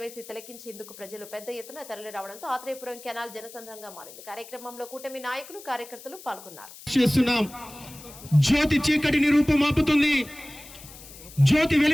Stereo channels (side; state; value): left; noise; hiss, 17 dB below the sound